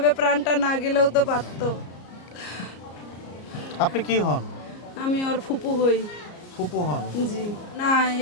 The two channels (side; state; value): right; late; 34 ms